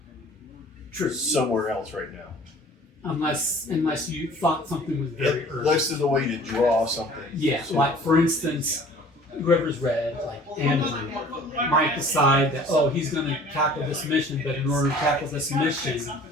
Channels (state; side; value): normal; both; correlation 0.49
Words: True. somewhere else right now. Unless you thought something was very urgent. Unless there's a way to draw something. Yeah, like for instance, whoever's read, like Andrew, might decide that, oh, he's going to tackle this mission, but in order to tackle this mission,